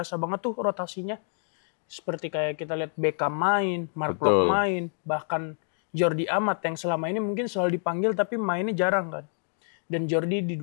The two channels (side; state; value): right; silent; 60 dB below the other